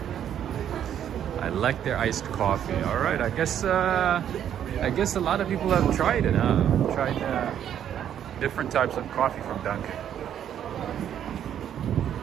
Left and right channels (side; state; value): left; quieter; 9.8 dB